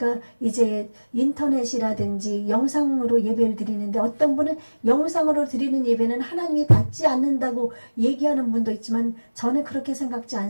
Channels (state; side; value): inverted; both; correlation -1.00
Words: 이제 인터넷이라든지 영상으로 예배를 드리는데, 어떤 분은 영상으로 드리는 예배는 하나님이 받지 않는다고 얘기하는 분도 있지만 저는 그렇게 생각지